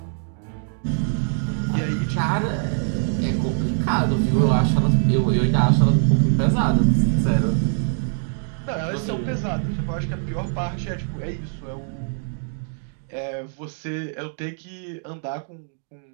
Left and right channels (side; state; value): left; silent; digital silence